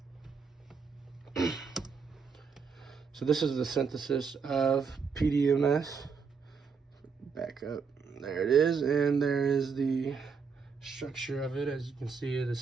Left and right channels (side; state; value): left; quieter; 5.7 dB